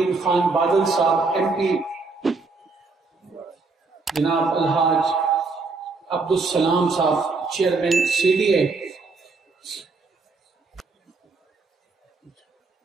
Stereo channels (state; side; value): quieter; left; 4.0 dB